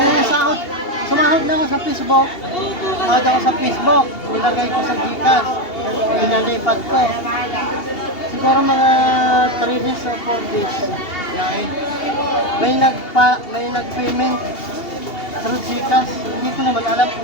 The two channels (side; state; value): right; late; 2.8 ms